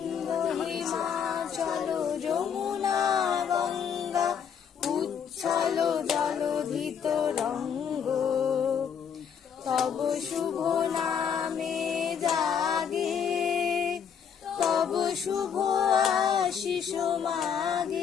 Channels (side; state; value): right; quieter; 7.6 dB